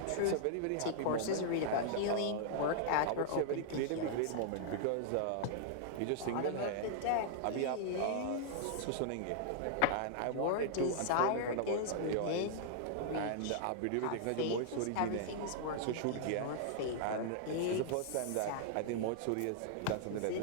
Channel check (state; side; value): different; both; correlation -0.01